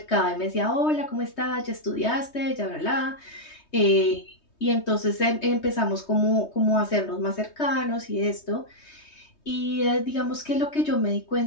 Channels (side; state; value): right; late; 3.2 ms